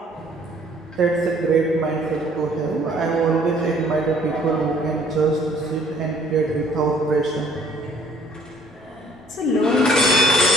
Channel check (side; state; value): both; normal; correlation 0.59